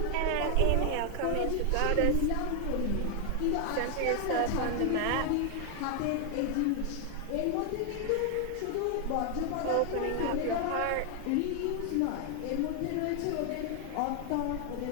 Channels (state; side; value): different; both; correlation 0.00